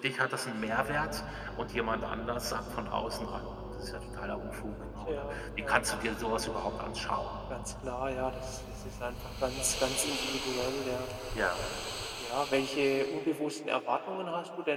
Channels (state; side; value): identical; both; correlation 1.00